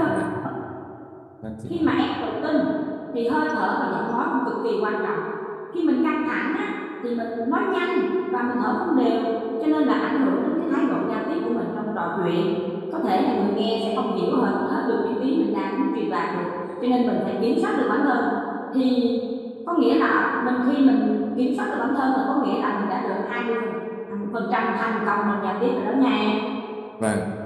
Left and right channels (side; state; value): both; identical; correlation 1.00